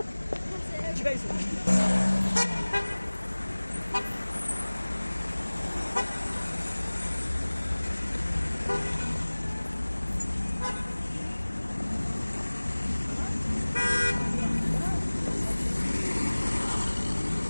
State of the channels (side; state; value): both; inverted; correlation -1.00